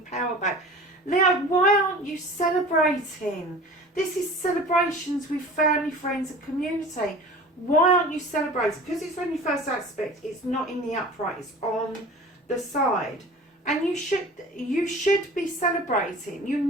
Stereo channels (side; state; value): both; normal; correlation 0.41